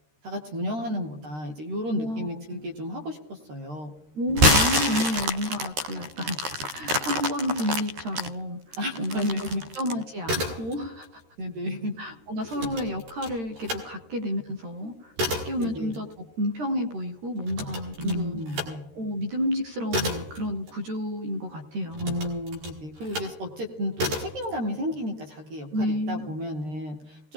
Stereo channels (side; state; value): left; late; 13 ms